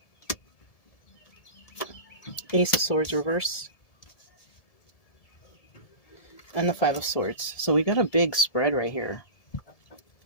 Ace of Swords reverse. And the Five of Swords. So we got a big spread right here.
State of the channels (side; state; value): right; late; 1.7 ms